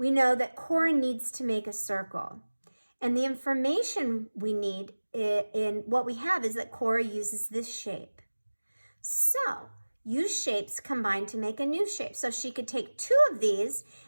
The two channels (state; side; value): inverted; both; correlation -1.00